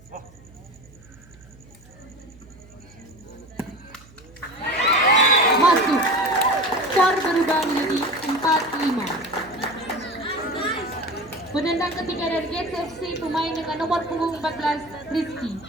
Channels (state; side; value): noise; right; hum, 23 dB below the sound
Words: Masuk, skor berubah menjadi 4-5. Penendang ketiga dari Gates FC, pemain dengan nomor punggung 14, Rizky.